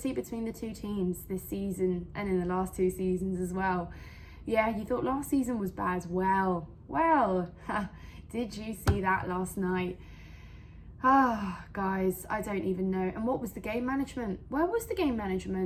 between the two teams this season and in the last 2 seasons as well. Yeah, you thought last season was bad. Well, did you see that last night? Guys, I don't even know. And what was the game management? Where was the game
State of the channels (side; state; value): both; identical; correlation 1.00